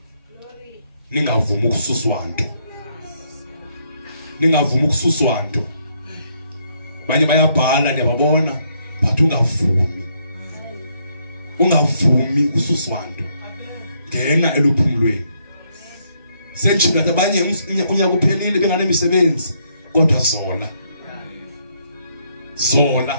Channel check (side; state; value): both; inverted; correlation -0.72